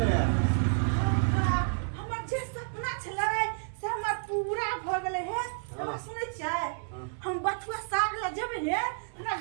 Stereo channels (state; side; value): silent; left; 58 dB below the other